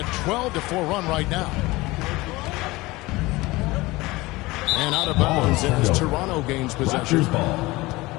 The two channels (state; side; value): quieter; right; 20.9 dB